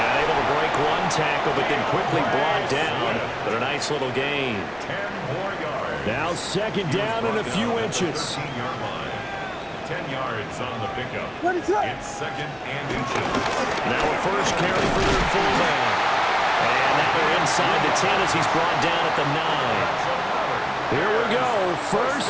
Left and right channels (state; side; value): identical; both; correlation 1.00